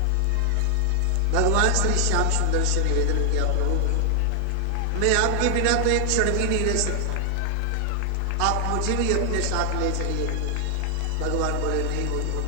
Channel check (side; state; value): both; different; correlation 0.00